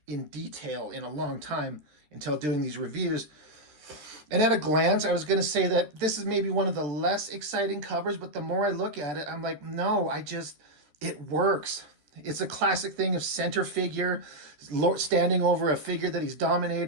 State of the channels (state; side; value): late; left; 13 ms